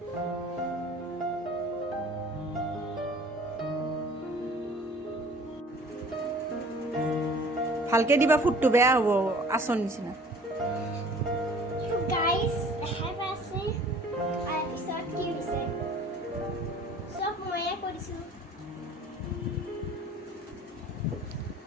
ভালকে দিবা, ফুটটো বেয়া হ'ব আচৰ নিচিনা।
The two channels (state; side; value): normal; both; correlation 0.49